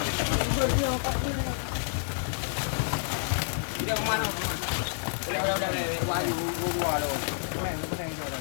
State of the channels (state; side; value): silent; right; 59 dB below the other